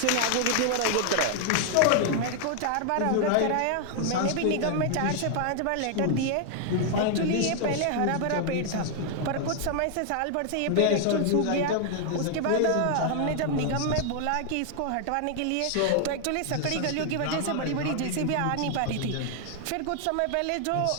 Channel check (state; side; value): different; both; correlation 0.00